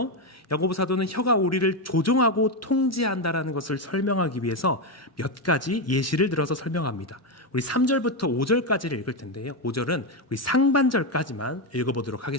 야고보 사도는 혀가 우리를 조종하고 통제한다라는 것을 설명하기 위해서 몇 가지 예시를 들어서 설명합니다. 우리 3절부터 5절까지를 읽을 텐데요. 5절은 우리 상반절까지만 읽어보도록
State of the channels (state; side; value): normal; both; correlation 0.08